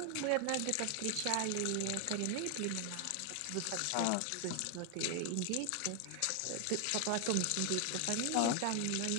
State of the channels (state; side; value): different; both; correlation 0.00